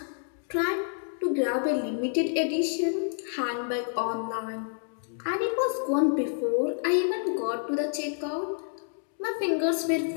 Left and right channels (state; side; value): silent; right; digital silence